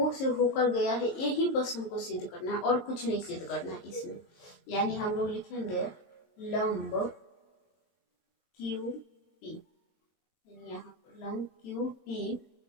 से होकर गया है, यही बस हमको सिद्ध करना है और कुछ नहीं सिद्ध करना है इसमें। यानी हम लोग लिखेंगे लंब क्यू पी, यानी यहाँ पर लंब क्यू पी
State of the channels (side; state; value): right; late; 22 ms